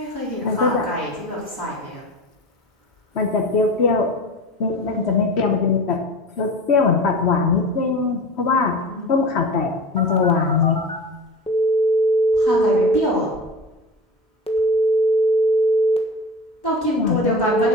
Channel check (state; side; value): normal; both; correlation 0.32